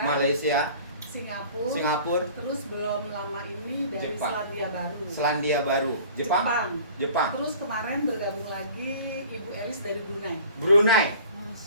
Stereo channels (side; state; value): both; inverted; correlation -0.47